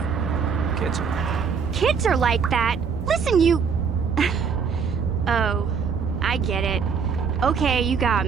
Kids are like that. Listen, you... Oh, I get it. Okay, you got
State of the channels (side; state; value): left; quieter; 6.1 dB